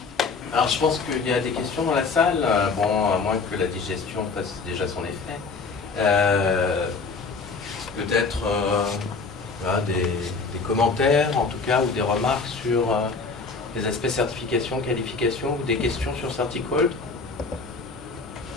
Alors, je pense qu'il y a des questions dans la salle, bon, à moins que la digestion fasse déjà son effet. Peut-être des commentaires, en tout cas, ou des remarques sur les aspects certification, qualification, ou des questions sur Certicode?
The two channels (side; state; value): right; quieter; 4.5 dB